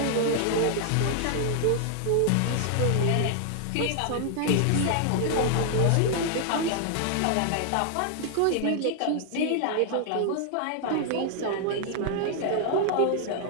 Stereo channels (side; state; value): both; different; correlation 0.00